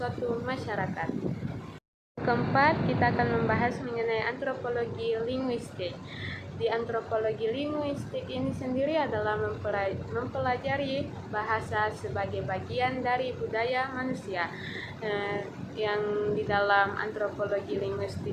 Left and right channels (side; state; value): both; identical; correlation 1.00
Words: masyarakat. Keempat, kita akan membahas mengenai antropologi linguistik. Di antropologi linguistik ini sendiri adalah mempelajari bahasa sebagai bagian dari budaya manusia. Yang di dalam antropologi